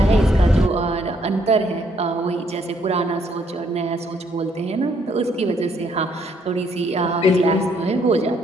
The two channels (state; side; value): normal; both; correlation 0.69